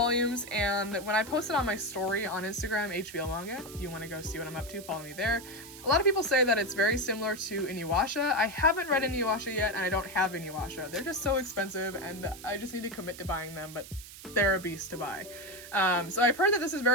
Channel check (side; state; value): right; noise; hiss, 16 dB below the sound